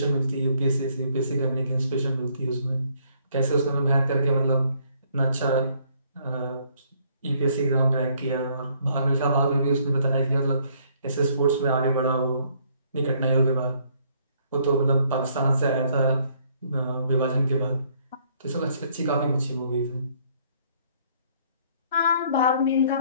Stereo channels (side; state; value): both; inverted; correlation -0.65